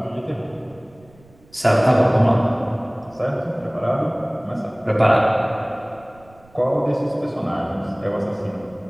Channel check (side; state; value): right; noise; rumble, 28 dB below the sound